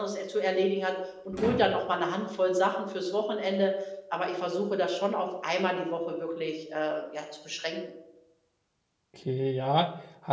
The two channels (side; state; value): both; identical; correlation 1.00